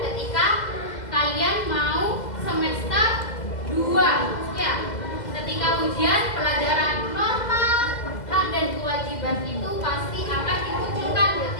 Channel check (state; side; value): late; right; 2.0 ms